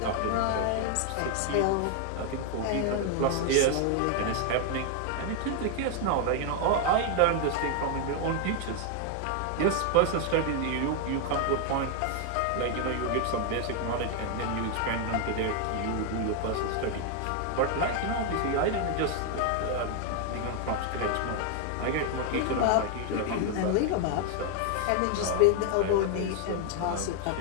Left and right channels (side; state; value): both; different; correlation 0.00